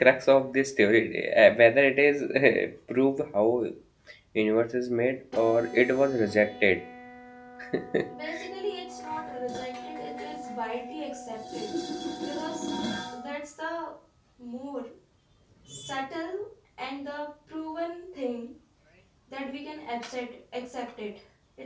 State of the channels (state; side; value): identical; both; correlation 1.00